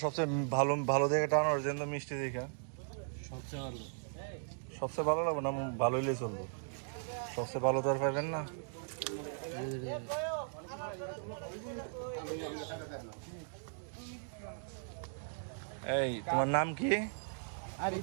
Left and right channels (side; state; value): left; silent; digital silence